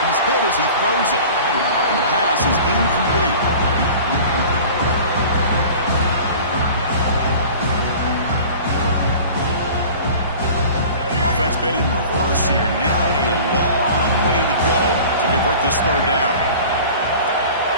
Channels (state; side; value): inverted; both; correlation -0.41